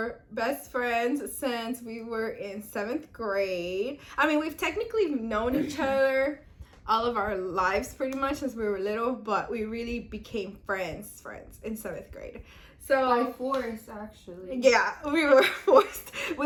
best friends since we were in 7th grade. I mean, we've technically known each other all of our lives pretty much since we were little, but we really became friends in 7th grade. So By force, actually. yeah, we were forced.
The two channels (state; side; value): identical; both; correlation 1.00